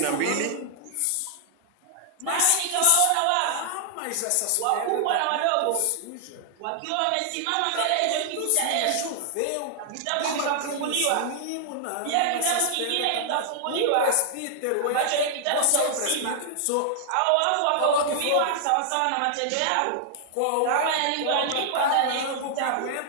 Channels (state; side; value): different; both; correlation -0.01